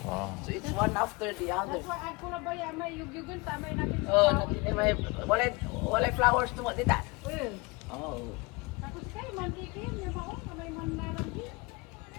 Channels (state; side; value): quieter; right; 26.1 dB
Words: Wow. So it's one after the other. That's why I kula ba ya may yugyugan tamay natin. Oh, natin may walay flowers to what did that? Eh. Oh. Tapos kay mantikin, may mao may manlalang di.